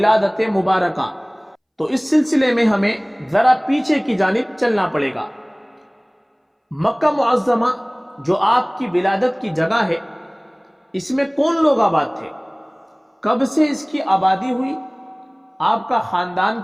مبارکہ، تو اس سلسلے میں ہمیں ذرا پیچھے کی جانب چلنا پڑے گا۔ مکہ معظمہ جو آپ کی ولادت کی جگہ ہے، اس میں کون لوگ آباد تھے، کب سے اس کی آبادی ہوئی، آپ کا خاندان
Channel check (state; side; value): identical; both; correlation 1.00